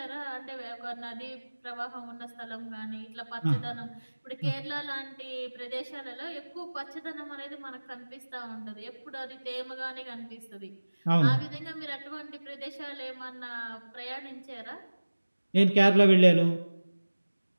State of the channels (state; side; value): inverted; both; correlation -1.00